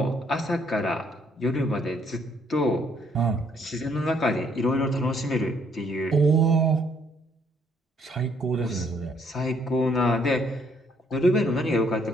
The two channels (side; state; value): both; normal; correlation 0.67